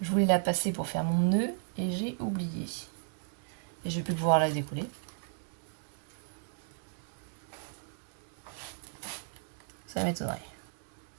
Je voulais la passer pour faire mon nœud et j'ai oublié. Et je vais plus pouvoir la découler. Ça m'étonnerait.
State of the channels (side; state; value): left; silent; digital silence